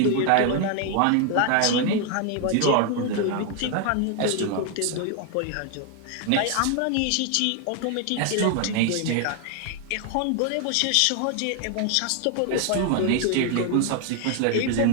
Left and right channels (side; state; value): both; different; correlation 0.01